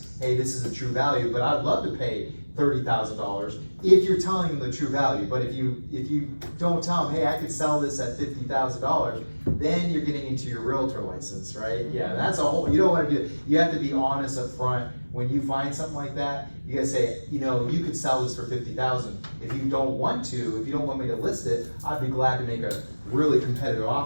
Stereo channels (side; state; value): both; inverted; correlation -1.00